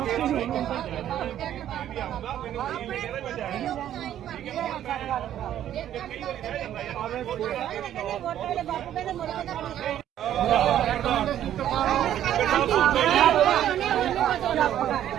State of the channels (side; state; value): left; quieter; 11.3 dB